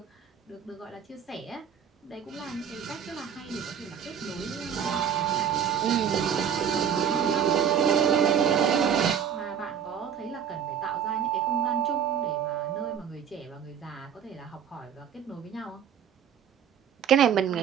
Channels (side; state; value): left; quieter; 8.2 dB